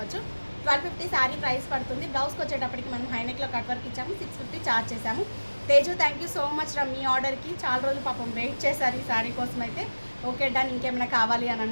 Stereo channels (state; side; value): inverted; both; correlation -1.00